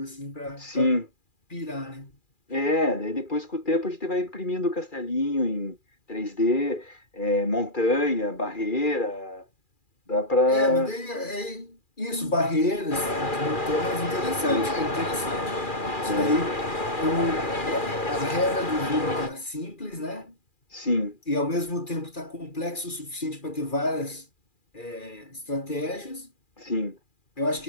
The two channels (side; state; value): right; late; 2.4 ms